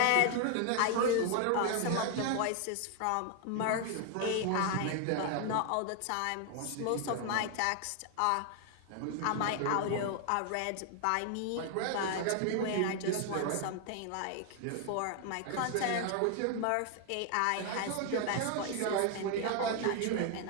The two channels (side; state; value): both; different; correlation 0.00